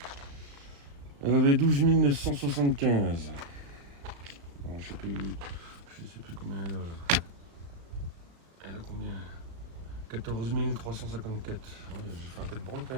Elle avait 12 975. Bon, je sais plus combien elle a là. Elle a combien 14 354. Ouais, j'ai fait un peu de bande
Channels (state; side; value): late; left; 35 ms